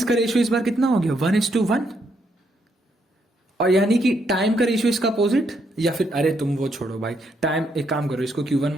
का रेशियो इस बार कितना हो गया? 1:1। और यानी कि टाइम का रेशियो इसका अपोजिट, या फिर अरे तुम वो छोड़ो भाई, टाइम एक काम करो, इसको Q1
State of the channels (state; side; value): normal; both; correlation 0.75